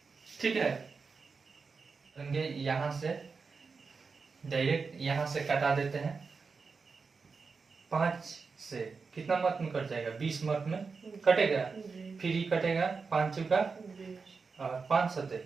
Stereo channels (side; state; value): left; quieter; 4.8 dB